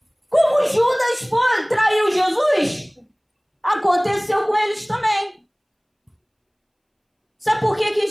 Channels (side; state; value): both; identical; correlation 1.00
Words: Como Judas traiu Jesus, aconteceu com eles também. Sabe por que